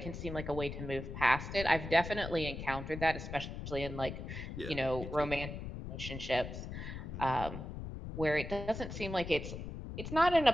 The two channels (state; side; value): noise; left; rumble, 8 dB below the sound